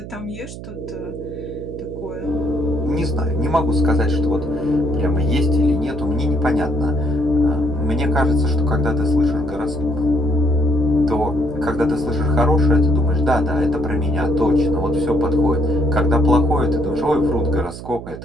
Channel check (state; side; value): noise; right; hum, 12 dB below the sound